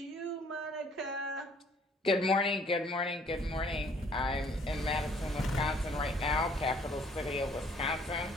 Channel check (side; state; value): both; normal; correlation 0.60